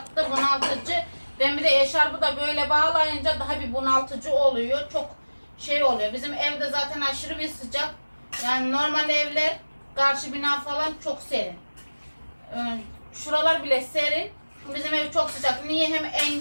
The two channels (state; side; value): inverted; both; correlation -1.00